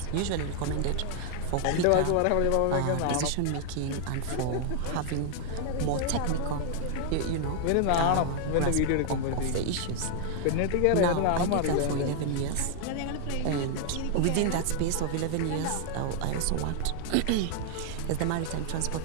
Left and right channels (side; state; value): both; different; correlation 0.00